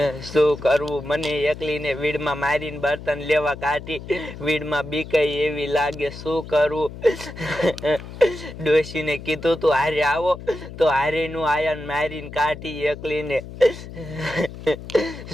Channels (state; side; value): noise; left; hum, 13 dB below the sound